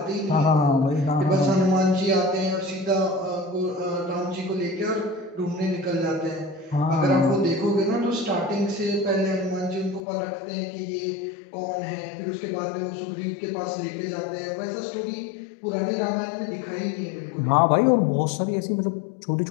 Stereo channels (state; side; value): drops out; right; at 10.0 s